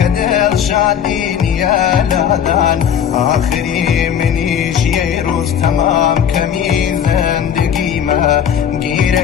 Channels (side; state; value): right; quieter; 8.7 dB